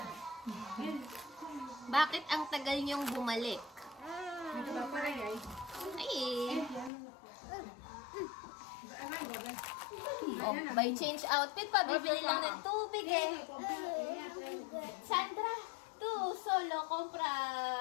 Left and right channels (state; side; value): drops out; right; at 6.9 s